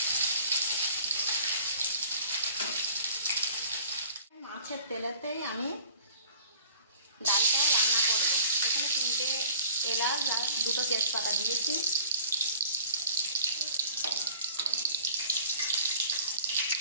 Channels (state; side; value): inverted; both; correlation -0.48